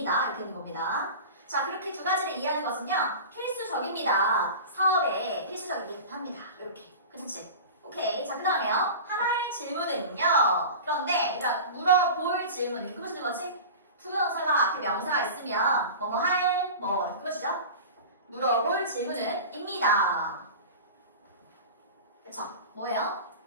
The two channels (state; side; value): inverted; both; correlation -0.34